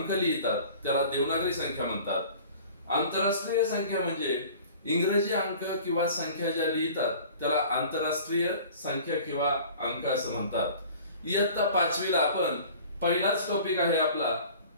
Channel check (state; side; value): inverted; both; correlation -0.45